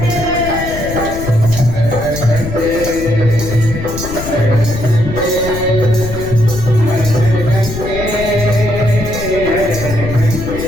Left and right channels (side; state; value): left; noise; rumble, 8 dB below the sound